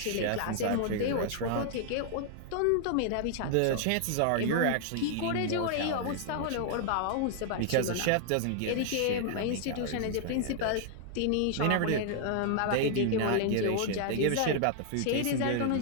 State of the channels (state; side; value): different; both; correlation 0.00